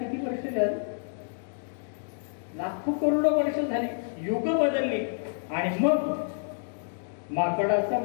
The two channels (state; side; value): silent; right; digital silence